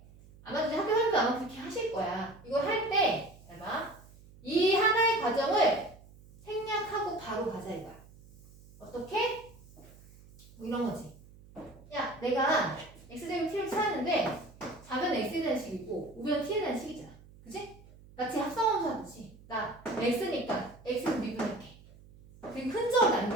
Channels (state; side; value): noise; right; hum, 22 dB below the sound